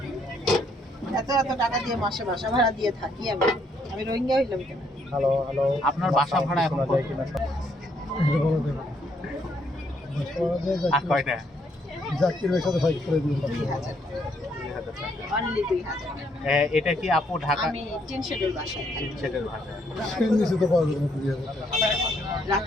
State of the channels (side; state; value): both; normal; correlation 0.71